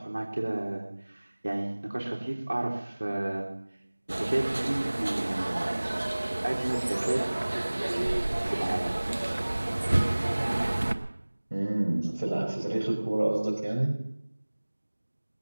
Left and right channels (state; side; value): inverted; both; correlation -1.00